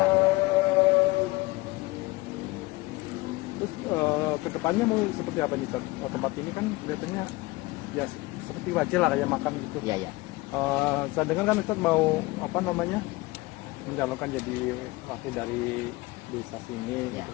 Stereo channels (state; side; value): quieter; right; 21.8 dB